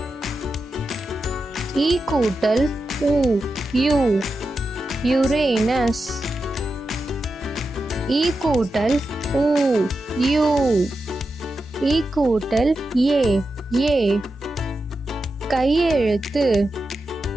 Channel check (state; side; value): normal; both; correlation 0.89